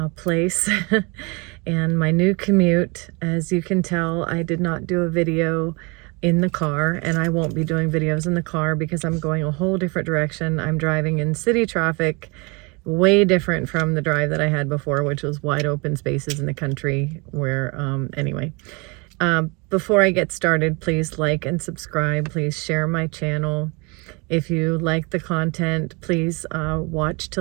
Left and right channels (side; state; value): left; quieter; 29.1 dB